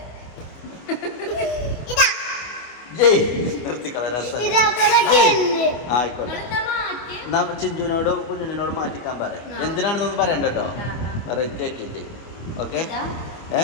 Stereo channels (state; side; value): late; right; 25 ms